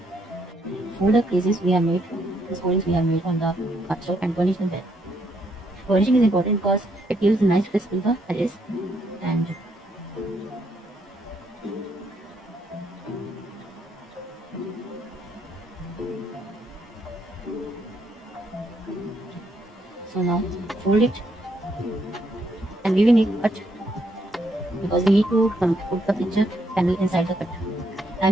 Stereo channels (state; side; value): normal; both; correlation 0.74